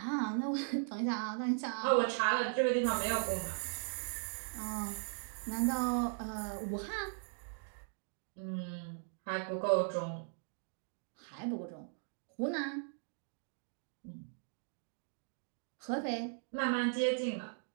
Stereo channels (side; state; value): left; silent; digital silence